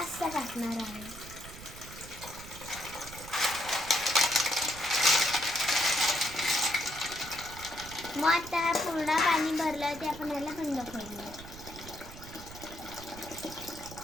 टाकणार आहे. मग आता पूर्ण पाणी भरलं ते आपण याला बंद करूया.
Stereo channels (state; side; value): noise; right; rumble, 14 dB below the sound